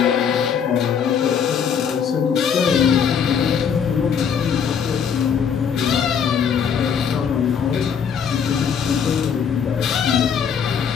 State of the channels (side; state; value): right; quieter; 7.3 dB